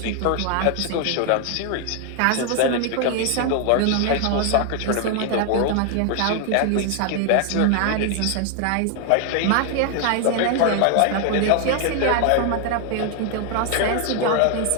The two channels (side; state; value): both; different; correlation 0.00